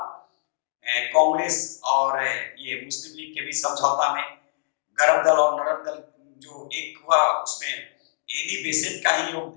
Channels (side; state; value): right; silent; digital silence